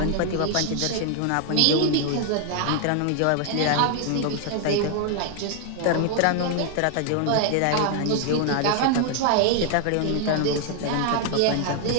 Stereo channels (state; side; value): different; both; correlation 0.00